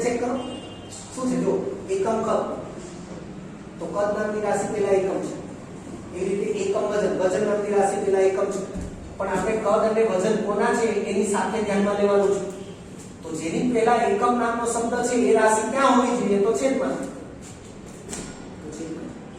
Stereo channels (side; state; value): both; identical; correlation 1.00